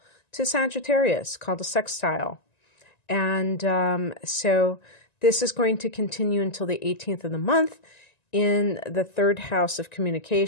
to Sagittarius called a sextile. And so this is going to continue until the 18th of the month in the third house of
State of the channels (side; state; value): right; late; 1.9 ms